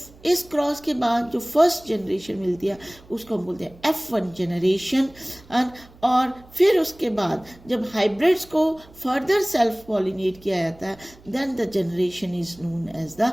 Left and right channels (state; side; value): noise; right; hum, 24 dB below the sound